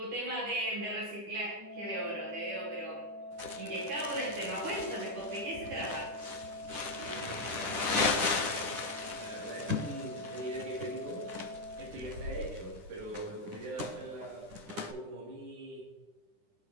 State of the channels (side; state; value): left; late; 10 ms